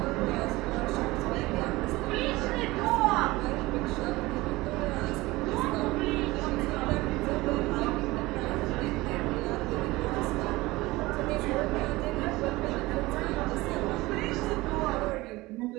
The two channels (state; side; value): quieter; left; 20.3 dB